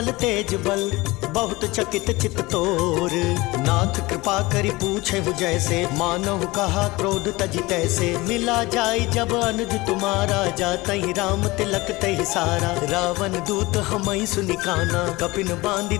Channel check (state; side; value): quieter; right; 21.4 dB